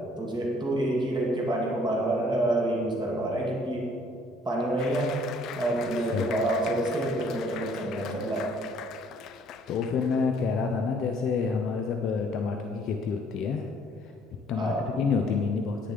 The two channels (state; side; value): normal; both; correlation 0.61